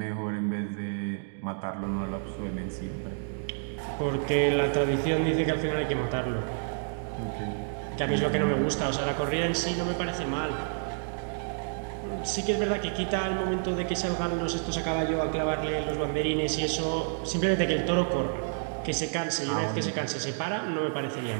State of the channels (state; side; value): silent; left; digital silence